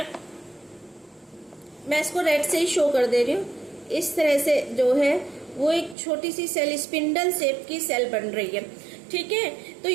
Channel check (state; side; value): drops out; left; at 6.0 s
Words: मैं इसको रेड से ही शो कर दे रही हूँ। इस तरह से जो है वो एक छोटी सी सेल, स्पिंडल शेप की सेल बन रही है। ठीक है, तो